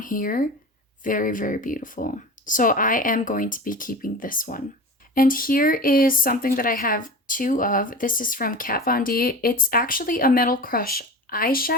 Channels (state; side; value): normal; both; correlation 0.32